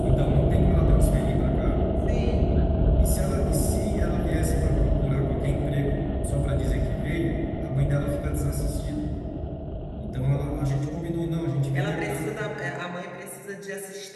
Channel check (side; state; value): both; identical; correlation 1.00